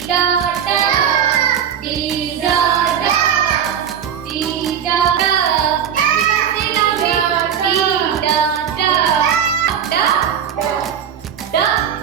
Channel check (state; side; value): quieter; left; 8.5 dB